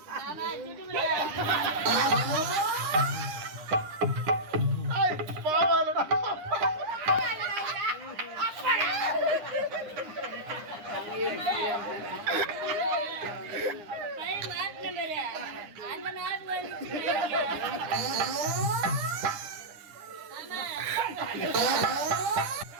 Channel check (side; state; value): left; late; 9.8 ms